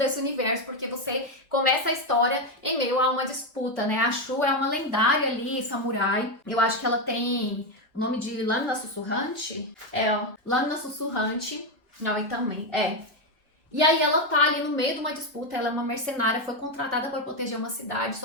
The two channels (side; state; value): both; normal; correlation 0.08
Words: universo, porque você começa a história em meio a uma disputa, né? A Shu é uma lendária ali, samurai. Eu acho que ela tem o nome de Lâmina Sussurrante. Lâmina Sussurrante. Não, e também, E aí ela tá ali no meio de uma disputa, ela é uma mercenária, foi contratada para proteger uma cidade,